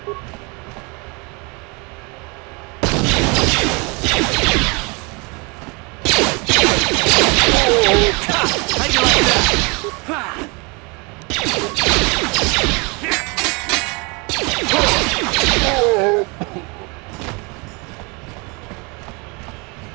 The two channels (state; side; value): quieter; left; 29.7 dB